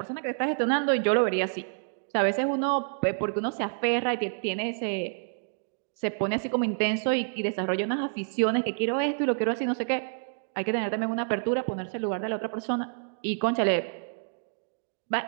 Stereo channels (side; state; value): left; silent; digital silence